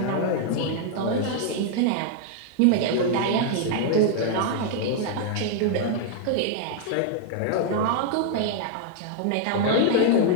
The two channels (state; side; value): different; both; correlation 0.00